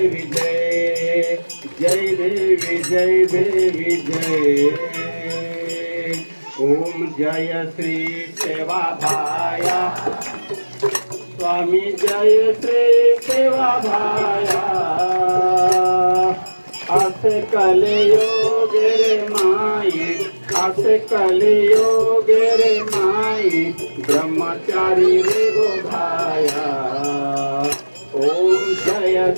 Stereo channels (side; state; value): both; inverted; correlation -1.00